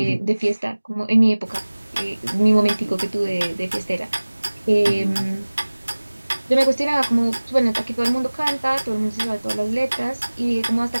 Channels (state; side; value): inverted; both; correlation -1.00